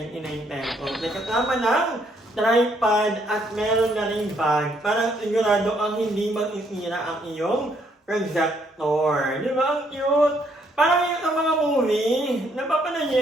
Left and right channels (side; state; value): both; normal; correlation 0.70